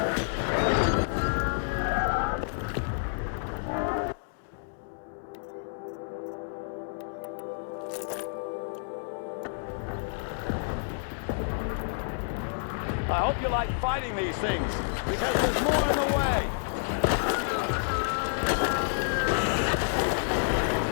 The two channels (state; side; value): silent; right; digital silence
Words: I hope you like fighting these things, because there's more in the way.